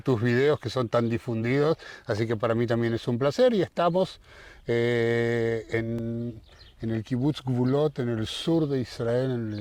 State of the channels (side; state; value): both; identical; correlation 1.00